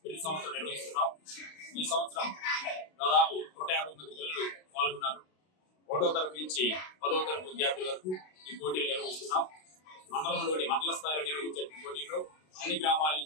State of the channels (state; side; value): late; right; 32 ms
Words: ప్రతి సంవత్సరం నిర్వహిస్తున్నాం. ఈ సంవత్సరం దాదాపు 150 మంది పిల్లలు పాల్గొన్నారు. 1వ తరగతి నుంచి 10వ తరగతి విద్యార్థుల వరకు ఈ పోటీలు నిర్వహిస్తున్నాం. మండలంలోని మండల స్థాయిలో నిర్వహించే పోటీల్లో అన్ని గ్రామాల